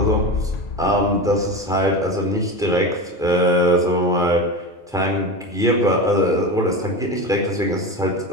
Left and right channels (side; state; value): both; normal; correlation 0.24